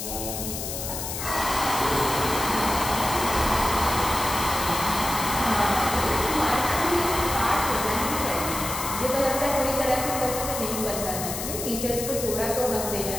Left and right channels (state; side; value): noise; left; hiss, 5 dB below the sound